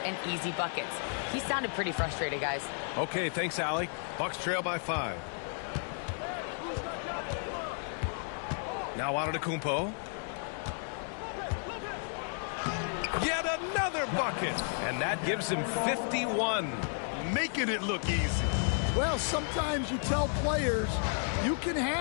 easy buckets. He sounded pretty frustrated, guys. Okay, thanks, Allie. Bucks trail by 5. Now Antetokounmpo. Yet another bucket, and that gives him 51. Making it look easy. Well, sometimes you tell players you can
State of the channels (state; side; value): silent; right; 56 dB below the other